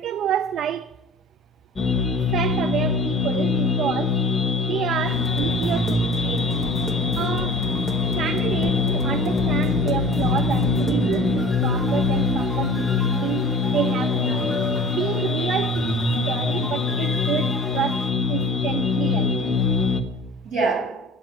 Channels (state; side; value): normal; both; correlation 0.42